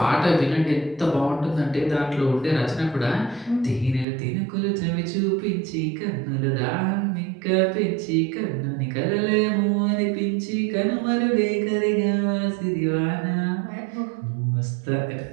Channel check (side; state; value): left; drops out; at 4.0 s